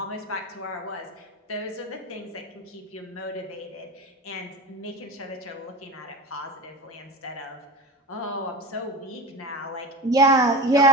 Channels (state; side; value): normal; both; correlation 0.27